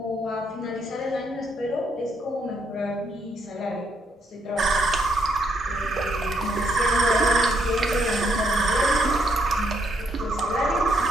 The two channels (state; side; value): normal; both; correlation 0.74